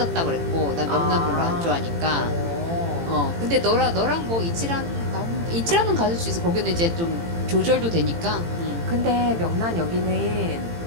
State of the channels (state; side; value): late; left; 18 ms